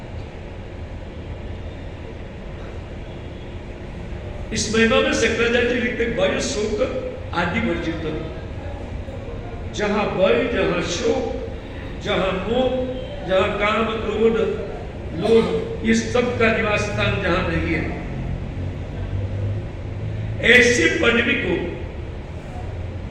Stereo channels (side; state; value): both; identical; correlation 1.00